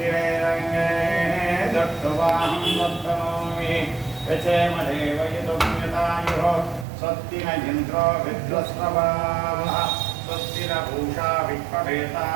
दत्तवाहं दत्तनोमि यचेमदेव यदुम्यतायुः स्वस्ति न इन्द्रो विद्वस्रवाः स्वस्ति न पूषा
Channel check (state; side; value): drops out; left; at 6.9 s